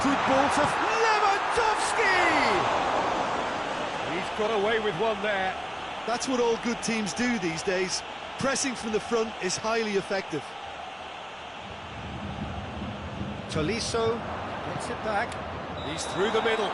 good ball to Lewandowski! He's got away with one there. That's what all good teams do these days. Pressing from the front is highly effective. Tolisso gets it back. He's through the middle.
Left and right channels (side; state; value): both; identical; correlation 1.00